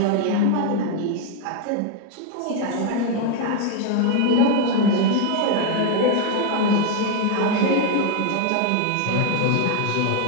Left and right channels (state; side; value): different; both; correlation 0.01